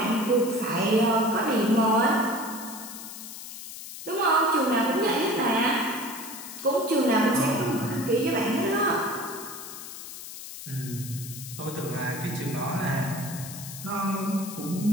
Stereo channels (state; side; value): noise; left; hiss, 11 dB below the sound